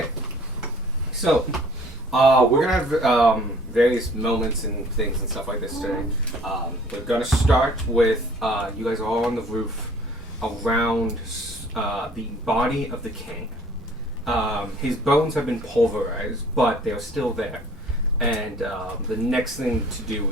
So, we're gonna have various moments and things and stuff like this today. We're gonna start with you guys are all on the roof around the body of the king. His bones have been pulverized, but they are still there. And the next thing to do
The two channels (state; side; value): normal; both; correlation 0.53